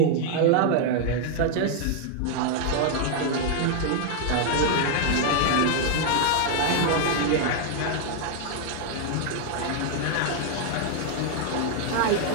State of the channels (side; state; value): both; different; correlation 0.00